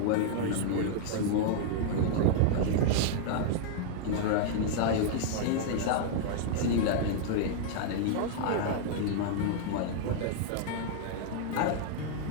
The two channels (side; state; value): both; different; correlation -0.01